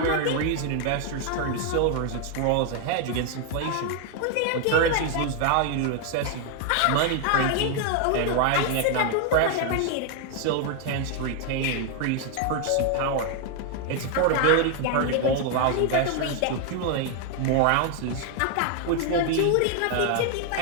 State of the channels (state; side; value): different; both; correlation 0.00